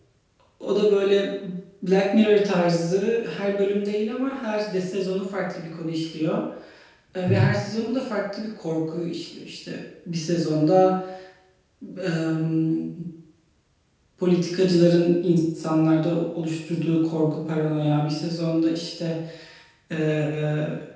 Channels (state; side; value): identical; both; correlation 1.00